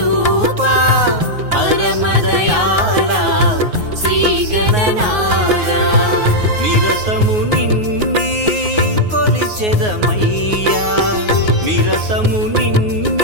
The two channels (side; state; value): left; late; 9.5 ms